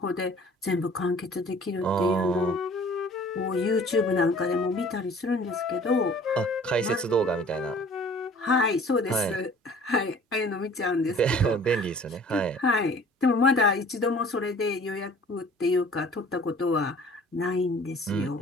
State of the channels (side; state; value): both; normal; correlation 0.50